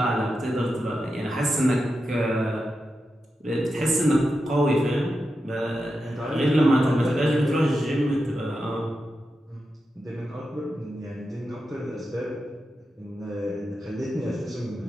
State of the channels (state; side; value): normal; both; correlation 0.89